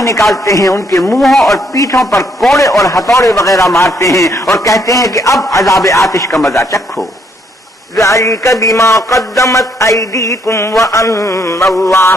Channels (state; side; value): normal; both; correlation 0.71